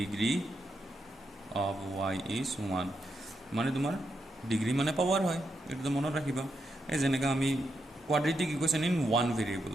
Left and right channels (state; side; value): normal; both; correlation 0.83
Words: অফ ৱাই ইজ 1। মানে তোমাৰ ডিগ্ৰী মানে পাৱাৰ হয়, এইটো মনত ৰাখিবা। এই যেনেকৈ আমি quadratic equation in one variable